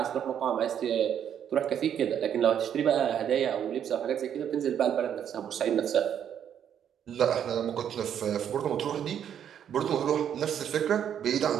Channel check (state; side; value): quieter; left; 9.1 dB